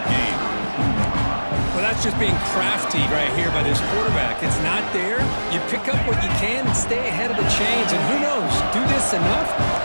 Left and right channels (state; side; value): inverted; both; correlation -1.00